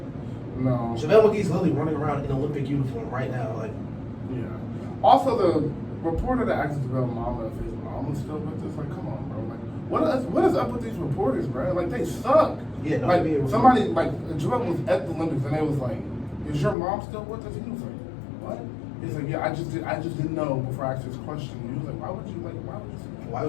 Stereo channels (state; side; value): drops out; right; at 16.8 s